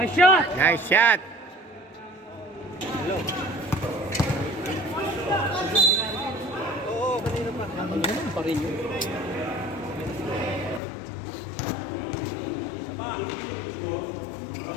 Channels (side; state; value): right; drops out; at 10.8 s